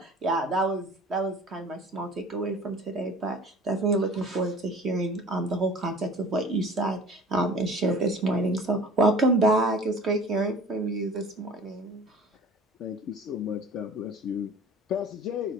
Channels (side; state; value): both; normal; correlation 0.44